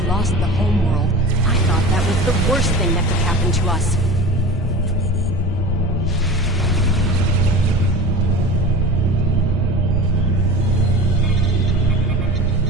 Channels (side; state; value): both; normal; correlation 0.35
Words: lost the homeworld, I thought that was the worst thing that could happen to us.